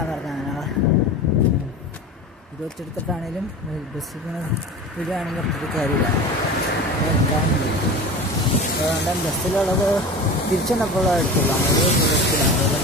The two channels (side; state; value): both; normal; correlation 0.32